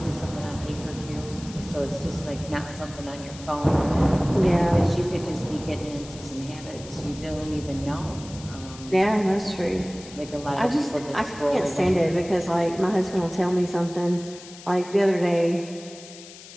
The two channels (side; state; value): left; noise; hiss, 17 dB below the sound